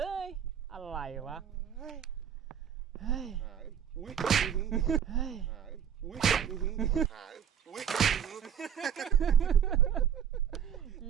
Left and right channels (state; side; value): quieter; left; 8.6 dB